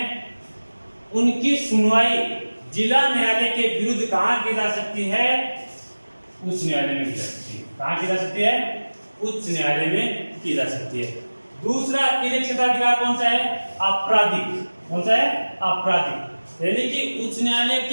उनकी सुनवाई जिला न्यायालय के विरुद्ध कहां की जा सकती है? उच्च न्यायालय में की जा सकती है। कहां की जा सकती है? उच्च न्यायालय में की जा सकती है। दूसरा अपीलीय क्षेत्राधिकार कौन सा है? आपराधिक। कौन सा है? आपराधिक, यानी कि उच्च न्यायालय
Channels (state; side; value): inverted; both; correlation -1.00